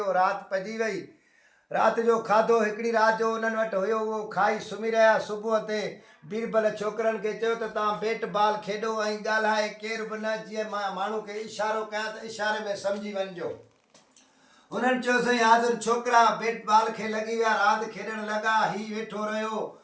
राति पइजी वई। राति जो खाधो हिकिड़ी राति जो उन्हनि वटि हुयो, उहो खाई सुम्ही रहिया। सुबुह ते बीरबल छोकिरनि खे चयो त तव्हां बेट बाल खेॾो ऐं ॻाल्हाए केर बि न, जीअं मां माण्हू खे इशारो कयां त इशारे में सम्झी वञिजो। उन्हनि चयो साईं हाज़िर छोकिरा बेट बाल खे लॻी विया, रांदि खेॾणु लॻा। हीउ वेठो रहियो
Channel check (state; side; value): identical; both; correlation 1.00